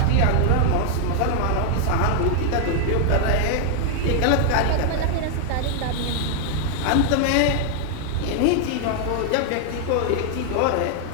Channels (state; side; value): different; both; correlation 0.00